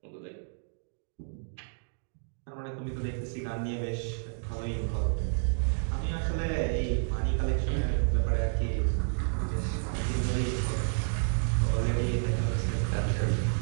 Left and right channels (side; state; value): left; silent; digital silence